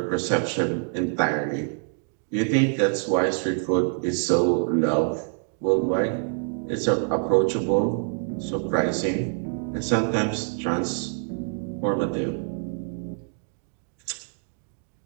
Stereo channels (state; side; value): silent; left; 56 dB below the other